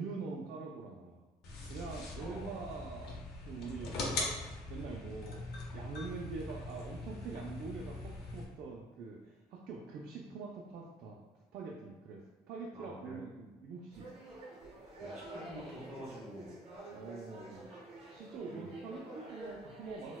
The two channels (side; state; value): both; normal; correlation 0.51